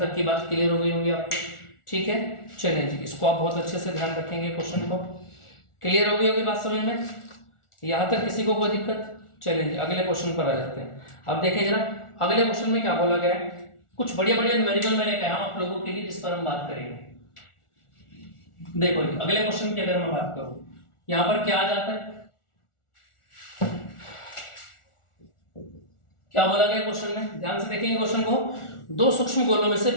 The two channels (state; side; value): late; right; 1.4 ms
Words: की बात क्लियर हो गई होगी आपको, ठीक है। चलिए जी, इसको आप बहुत अच्छे से ध्यान रखेंगे, क्वेश्चन को क्लियर हो गई होगी बात समझ में, यहाँ तक किसी को कोई दिक्कत। चलिए जी अगले क्वेश्चन पर आ जाते हैं। अब देखिए जरा अगले क्वेश्चन में क्या बोला गया है, कुछ बढ़िया बढ़िया न्यूमेरिकल मैंने कहा आप लोगों के लिए, जिस पर हम बात करेंगे। देखो जी अगले क्वेश्चन की अगर मैं बात करूं, यहाँ पर क्या आ जाता है, क्या बोला गया क्वेश्चन में, ध्यान से देखेंगे क्वेश्चन को। दो सूक्ष्म गोलों में से